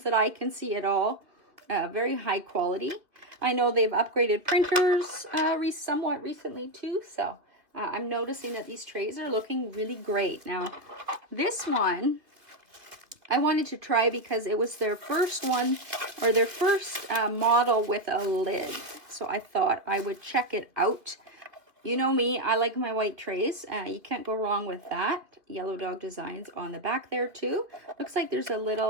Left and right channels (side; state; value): left; late; 2.4 ms